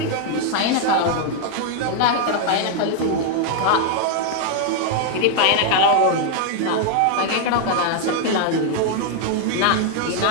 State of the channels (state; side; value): different; both; correlation 0.00